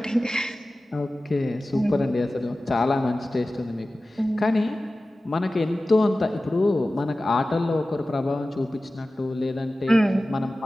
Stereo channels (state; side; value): normal; both; correlation 0.96